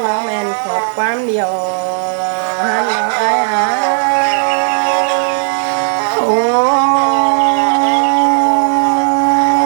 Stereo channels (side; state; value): left; silent; 71 dB below the other